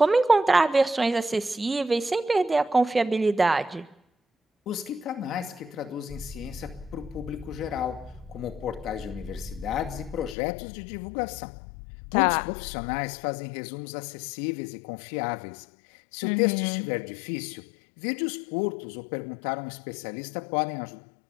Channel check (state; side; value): drops out; right; at 10.4 s